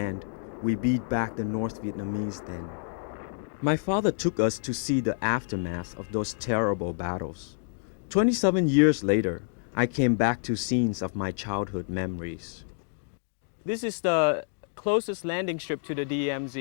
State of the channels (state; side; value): silent; right; digital silence